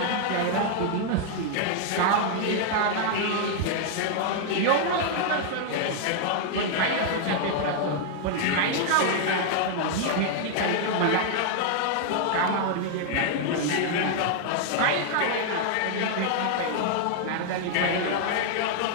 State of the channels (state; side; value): different; both; correlation 0.00